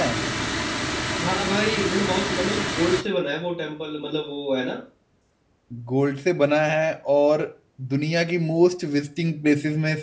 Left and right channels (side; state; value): both; identical; correlation 1.00